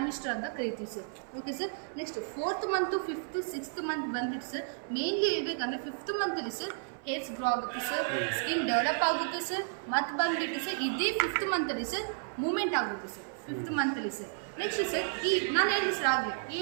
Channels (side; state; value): left; silent; 56 dB below the other